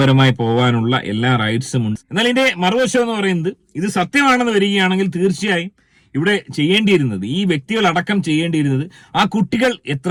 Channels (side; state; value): both; identical; correlation 1.00